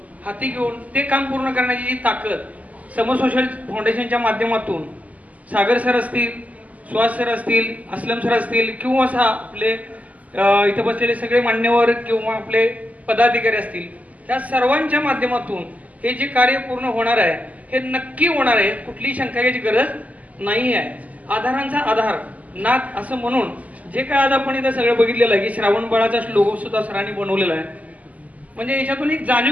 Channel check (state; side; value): late; left; 0.074 ms